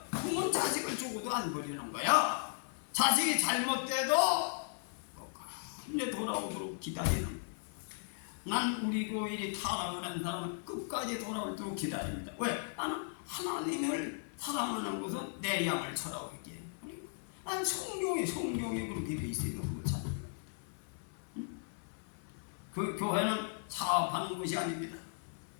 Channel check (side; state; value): right; silent; 53 dB below the other